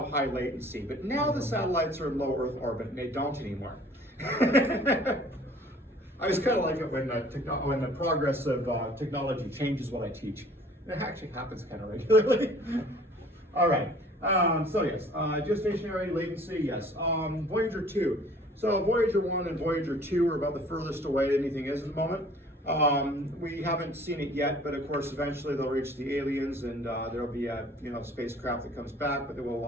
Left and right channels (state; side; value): normal; both; correlation 0.52